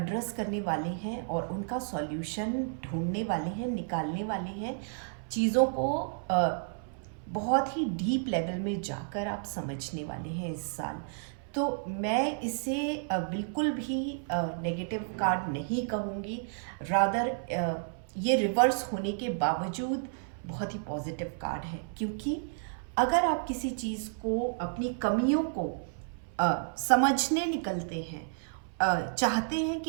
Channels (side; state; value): left; silent; 57 dB below the other